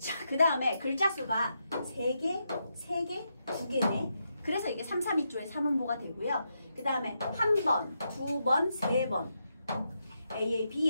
그 다음에 글자 수가 3개, 2개네. 그래서 이게 3, 3, 2조의 3음보가 되고요. 그 다음에 한 번, 2번, 3번. AA,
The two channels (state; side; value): inverted; both; correlation -0.83